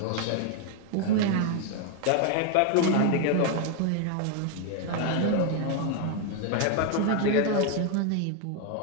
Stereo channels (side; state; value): both; different; correlation 0.01